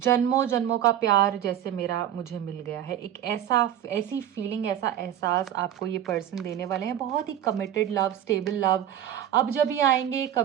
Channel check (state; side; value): quieter; left; 10.9 dB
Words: जन्मों का प्यार जैसे मुझे मिल गया है। एक ऐसी फीलिंग, ऐसा एहसास आपको ये पर्सन देने वाले हैं। बहुत ही कमिटेड लव, स्टेबल लव। अब जब ये आएंगे